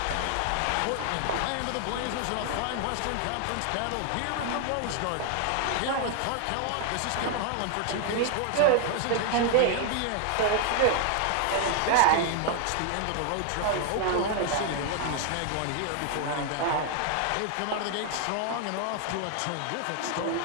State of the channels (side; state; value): both; different; correlation 0.00